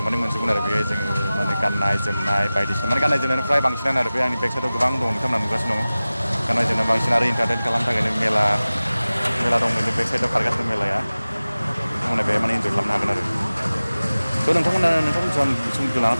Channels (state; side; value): inverted; both; correlation -0.97